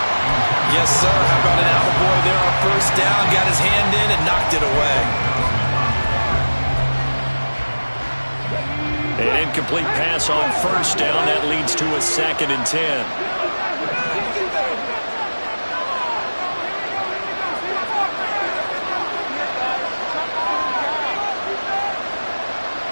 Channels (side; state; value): both; inverted; correlation -1.00